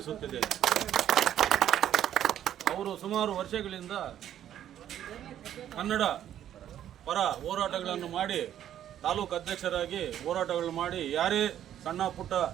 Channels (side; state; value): left; quieter; 10.9 dB